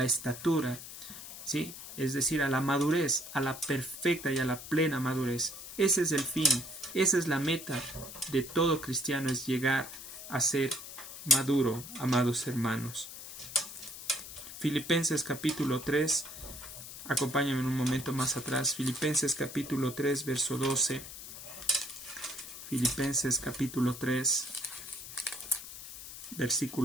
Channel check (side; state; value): left; noise; hiss, 12 dB below the sound